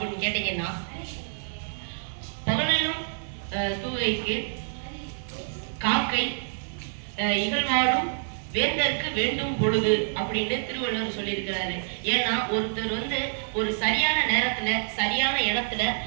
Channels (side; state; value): left; silent; 60 dB below the other